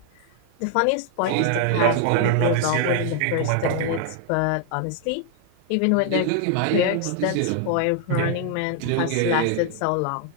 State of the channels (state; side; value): different; both; correlation 0.00